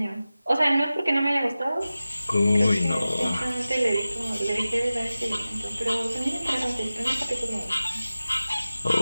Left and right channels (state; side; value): inverted; both; correlation -0.96